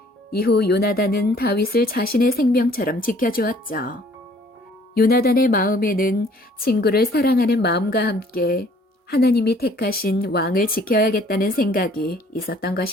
이후 요나단은 다윗을 자신의 생명처럼 지켜주었죠. 요나단의 마음에는 친구를 사랑하는 마음과 함께 하나님이 택하신 왕을 지켜야겠다는 생각이 있었던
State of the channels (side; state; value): both; normal; correlation 0.57